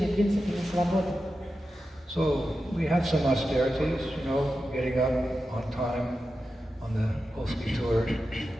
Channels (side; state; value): both; normal; correlation 0.91